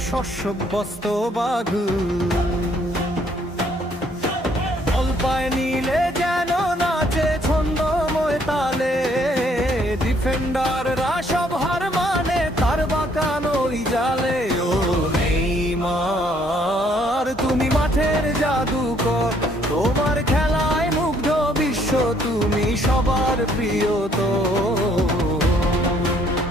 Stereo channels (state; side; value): normal; both; correlation 0.65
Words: শস্যবস্ত বাঘ। বল পায় নিলে যেন নাচে ছন্দময় তালে, ডিফেন্ডাররা সব হার মানে তার বাঁকানোই জালে। ও নেইমার তুমি মাঠের জাদুকর, তোমার খেলায় মুগ্ধ বিশ্ব, তুমি সবার প্রিয় তো।